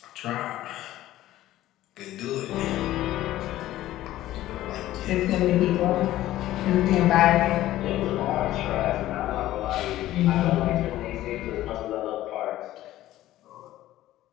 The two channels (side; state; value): right; quieter; 14.7 dB